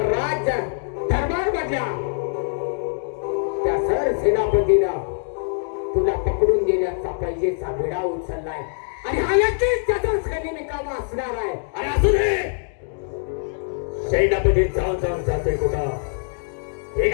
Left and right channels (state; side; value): silent; right; digital silence